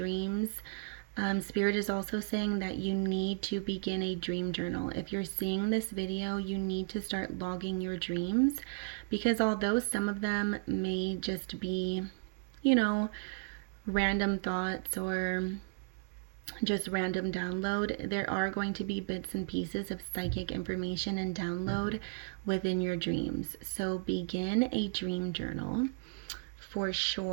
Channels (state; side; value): silent; left; 55 dB below the other